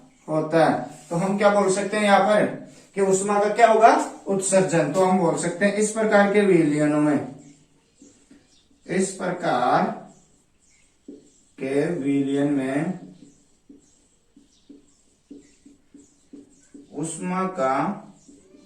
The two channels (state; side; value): identical; both; correlation 1.00